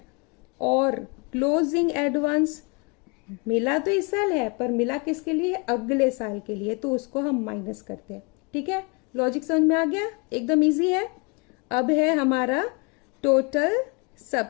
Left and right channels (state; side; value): quieter; right; 31.7 dB